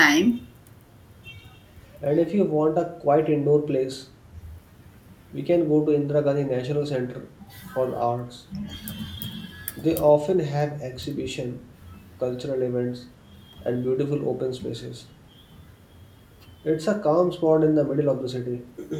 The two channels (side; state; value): both; identical; correlation 1.00